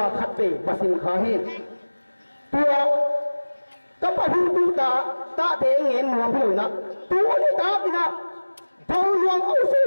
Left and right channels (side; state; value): both; inverted; correlation -1.00